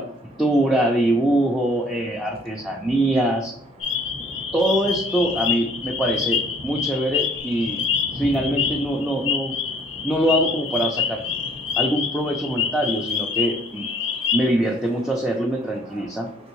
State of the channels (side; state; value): both; normal; correlation 0.59